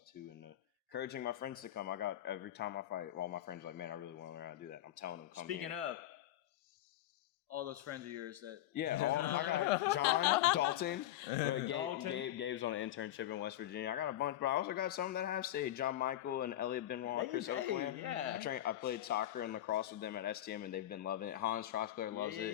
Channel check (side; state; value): right; quieter; 13.3 dB